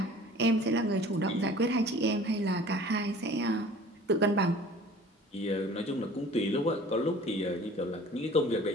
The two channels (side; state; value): both; normal; correlation 0.47